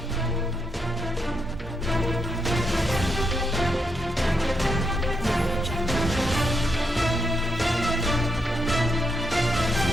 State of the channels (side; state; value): both; normal; correlation 0.80